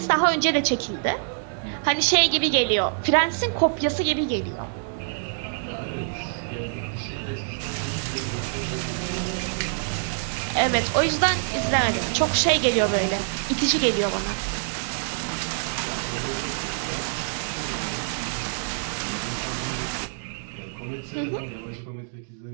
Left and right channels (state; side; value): silent; left; digital silence